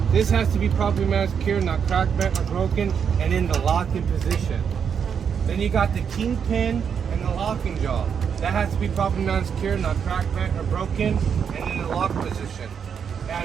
This has to be properly mounted, secure, not cracked, bent, or broken, and in the locking position. Then you got the kingpin and the locking jaw. That has to be properly mounted, secure, not cracked, bent, or broken, and in the lock position. And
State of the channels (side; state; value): left; quieter; 7.2 dB